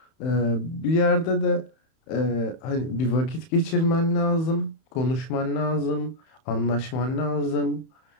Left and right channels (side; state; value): right; late; 31 ms